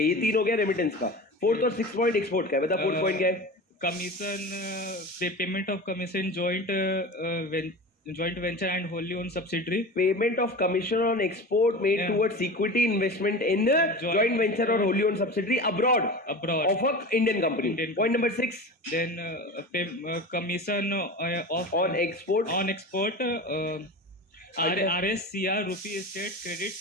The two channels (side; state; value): both; normal; correlation 0.31